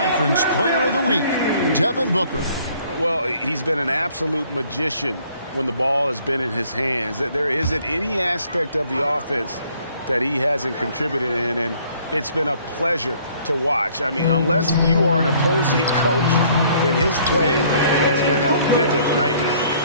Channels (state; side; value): inverted; both; correlation -0.60